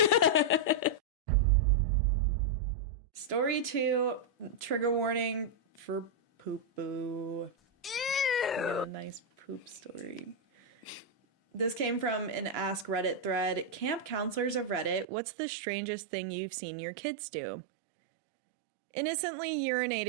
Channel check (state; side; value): drops out; left; at 15.1 s